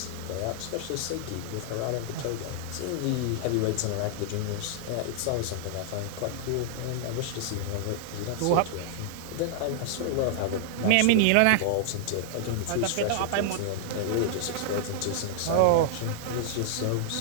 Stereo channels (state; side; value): different; both; correlation -0.01